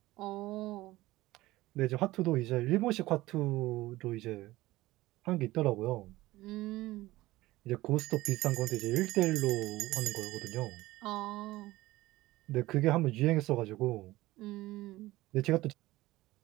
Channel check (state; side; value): quieter; left; 18.0 dB